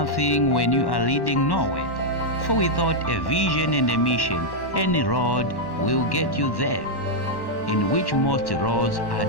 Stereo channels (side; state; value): right; late; 1.1 ms